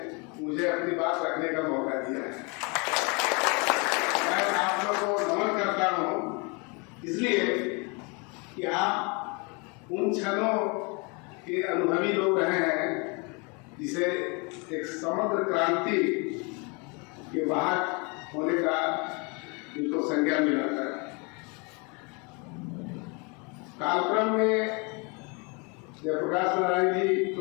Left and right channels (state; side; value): quieter; right; 31.1 dB